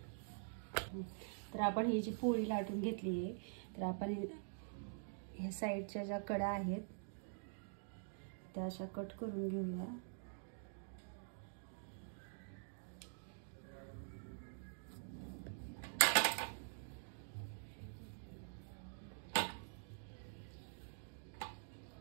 तर आपण ही जी पोळी लाटून घेतली आहे, तर आपण ह्या साईडच्या ज्या कडा आहेत त्या अशा कट करून घेऊया.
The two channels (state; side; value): silent; left; digital silence